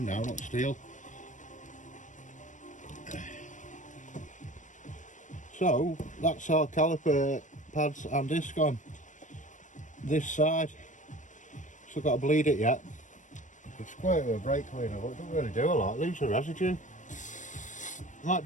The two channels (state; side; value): late; right; 0.37 ms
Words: now, not steel. So that's our caliper pads and disc on this side. Still got to bleed it yet. It's quite a brake cleaner, but it doesn't really do a lot. It leaves a residue.